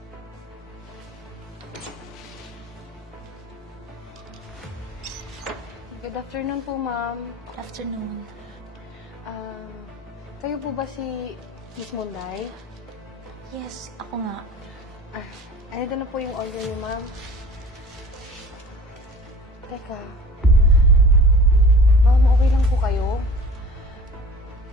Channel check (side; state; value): both; normal; correlation 0.43